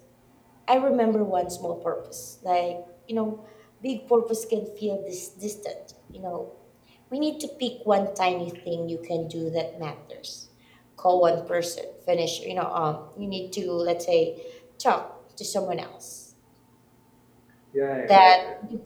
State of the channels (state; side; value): identical; both; correlation 1.00